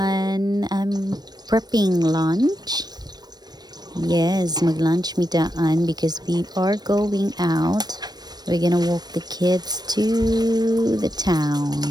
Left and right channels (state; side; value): late; left; 0.19 ms